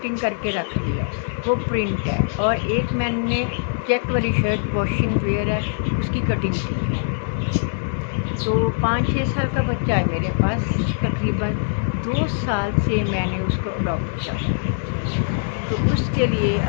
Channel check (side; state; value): right; silent; digital silence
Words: करके रख लिया, वो प्रिंट है। और एक मैंने चेक वाली शर्ट वॉशिंग वेयर है, उसकी कटिंग की है। तो 5-6 साल का बच्चा है मेरे पास, तकरीबन 2 साल से मैंने उसको अडॉप्ट किया। तो उसके लिए